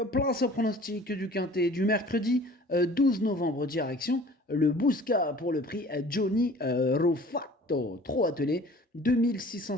place au pronostic du quintet du mercredi 12 novembre, direction le Bousca pour le prix Johnny Rufato. Trop attelé,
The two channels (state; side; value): normal; both; correlation 0.47